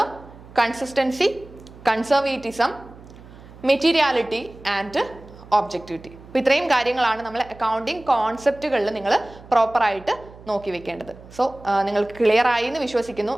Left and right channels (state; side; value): noise; right; hum, 20 dB below the sound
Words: consistency, conservatism, materiality and objectivity. അപ്പോൾ ഇത്രയും കാര്യങ്ങളാണ് നമ്മൾ accounting കോൺസെപ്റ്റുകളിൽ നിങ്ങൾ പ്രോപ്പറായിട്ട് നോക്കി വെക്കേണ്ടത്. സോ നിങ്ങൾക്ക് clear ആയി എന്ന് വിശ്വസിക്കുന്നു.